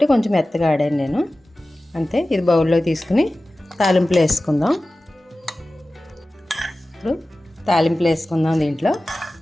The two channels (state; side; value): normal; both; correlation 0.96